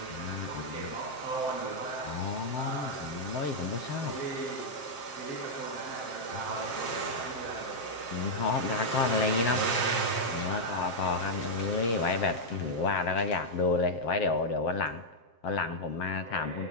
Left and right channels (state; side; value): late; right; 7.6 ms